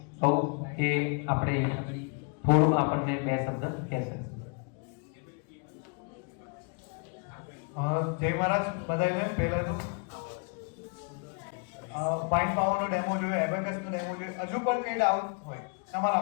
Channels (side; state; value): right; quieter; 36.2 dB